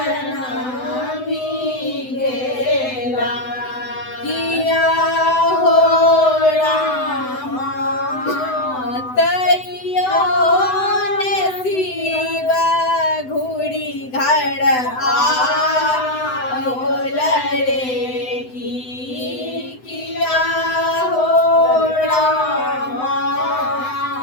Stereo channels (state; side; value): late; right; 7.9 ms